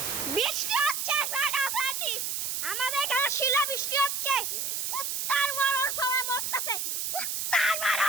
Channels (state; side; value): noise; right; hiss, 1 dB below the sound